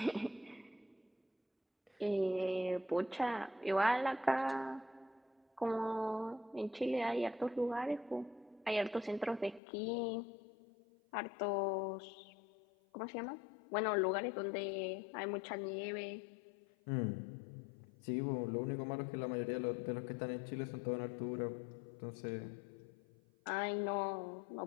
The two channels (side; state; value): right; drops out; at 9.6 s